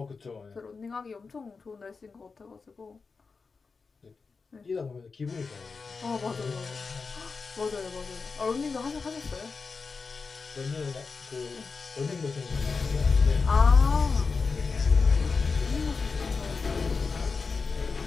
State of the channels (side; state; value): right; quieter; 4.7 dB